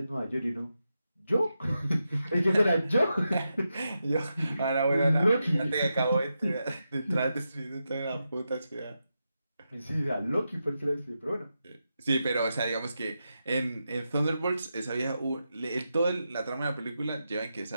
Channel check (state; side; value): inverted; both; correlation -0.88